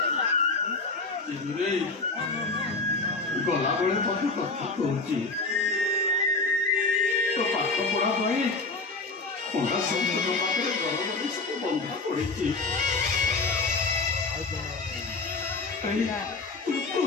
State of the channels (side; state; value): right; quieter; 3.6 dB